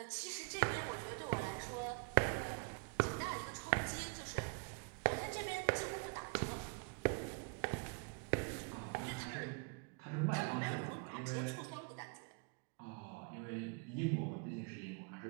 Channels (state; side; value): quieter; left; 34.9 dB